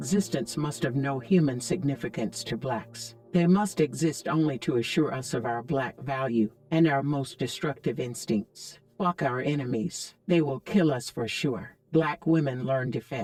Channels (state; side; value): identical; both; correlation 1.00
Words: must have no human significance to blacks. They must exist only to assure us of our black value and our most destructive instincts. Fuck our enemies. They will kill us for sure. Black women learn